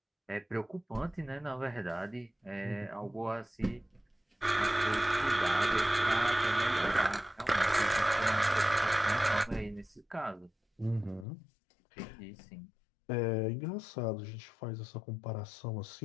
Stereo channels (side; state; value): right; drops out; at 11.2 s